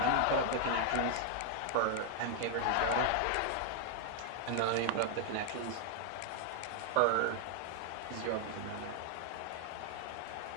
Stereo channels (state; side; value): different; both; correlation 0.00